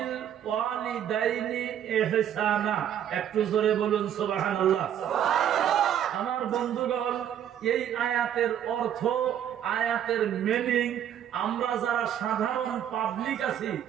ওয়ালিদাইনি ইহসানা। একটু জোরে বলুন সুবহানাল্লাহ। আমার বন্ধুগণ, এই আয়াতের অর্থ, আয়াতের মিনিং আমরা যারা সাধারণ পাবলিক আছি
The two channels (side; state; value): left; quieter; 10.0 dB